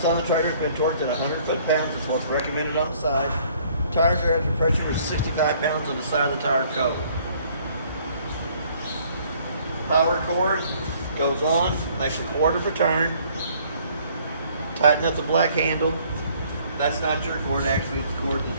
on the trailer has been torqued at 100 foot-pounds. That's what's recommended on the side. Tires are at pressure with 65 pounds on the side of the tire cover. Power cord goes on, makes a quarter of a turn. Tighten up the black handle. That's not your cord, actually. It's the cord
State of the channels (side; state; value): both; inverted; correlation -0.60